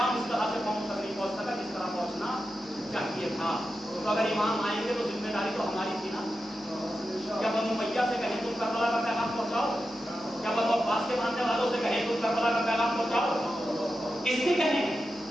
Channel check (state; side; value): noise; left; hum, 27 dB below the sound